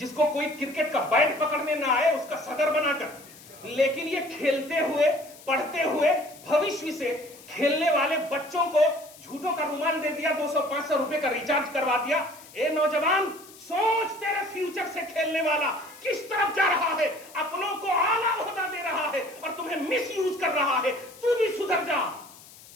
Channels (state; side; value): noise; left; hiss, 21 dB below the sound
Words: کو کوئی کرکٹ کا بیٹ پکڑنے نہ آئے اس کا صدر بنا کر. لیکن یہ کھیلتے ہوئے پڑھتے ہوئے بھوشیہ سے کھیلنے والے بچوں کو جھوٹوں کا رومال دے دیا, 200-500 روپے کا ریچارج کروا دیا. اے نوجوان سوچ, تیرے فیوچر سے کھیلنے والا کس طرف جا رہا ہے, اپنوں کو اعلیٰ عہدہ دے رہا ہے اور تمہیں مس یوز کر رہا ہے. تو بھی سدھر جا,